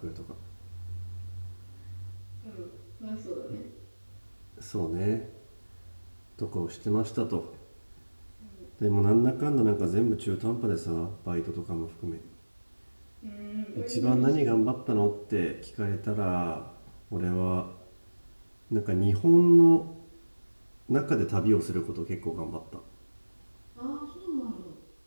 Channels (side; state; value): both; inverted; correlation -1.00